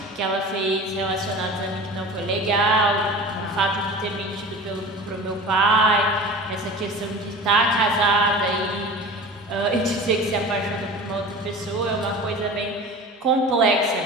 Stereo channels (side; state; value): both; normal; correlation 0.36